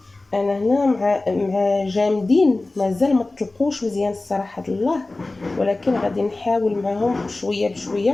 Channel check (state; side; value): quieter; right; 3.1 dB